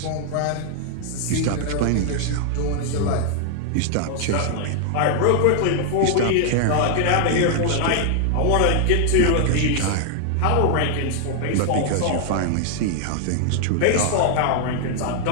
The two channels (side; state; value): both; different; correlation 0.00